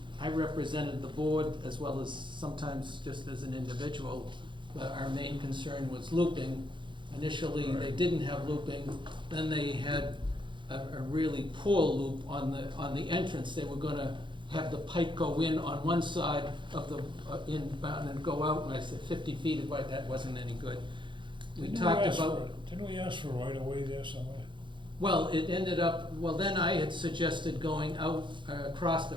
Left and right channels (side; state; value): left; late; 0.23 ms